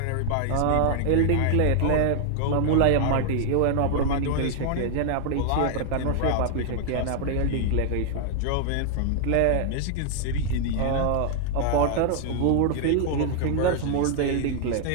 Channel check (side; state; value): both; different; correlation 0.00